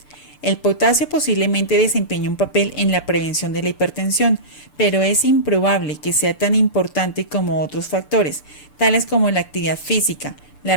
El potasio posiblemente desempeña un papel en la prevención de la hipertensión, pero es improbable que sea tan importante como otros factores, tales como la actividad física, la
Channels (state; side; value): late; right; 6.8 ms